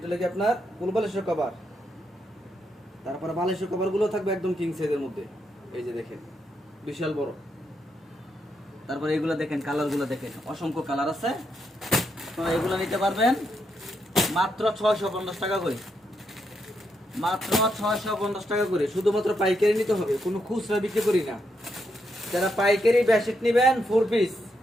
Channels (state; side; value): normal; both; correlation 0.80